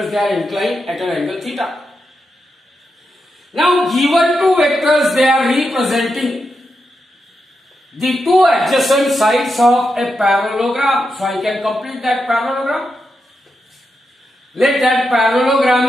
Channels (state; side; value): normal; both; correlation 0.86